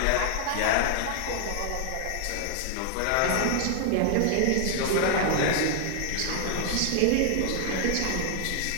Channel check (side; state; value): both; different; correlation 0.00